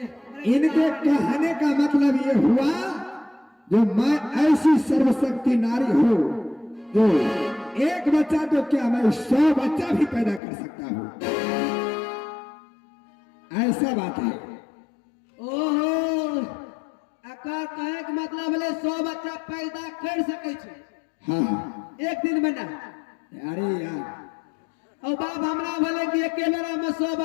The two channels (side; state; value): right; drops out; at 10.4 s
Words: इनके कहने का मतलब ये हुआ, जो मैं ऐसी सर्वशक्ति नारी हूँ जो एक बच्चा तो क्या, मैं 100 बच्चा भी पैदा कर सकता हूँ, ऐसा बात है। ओहो, अकार कहे के मतलब है 100 बच्चा पैदा कर सके छे। हाँ, एक दिन में ना। अरे यार, और बाप हमरा बोले कि एक बेरा में 100